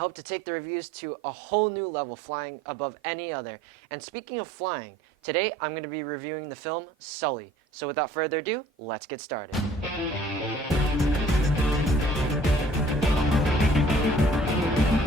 to take the reviews to a whole new level, flying above any other. And speaking of flying, today I'm going to be reviewing the film Sully. So without further ado, let's get started.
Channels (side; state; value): both; normal; correlation 0.53